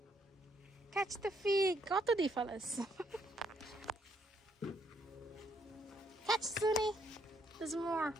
Catch the fig. কত দি ফেলাস Catch Zuni. There's more.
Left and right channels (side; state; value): both; normal; correlation 0.71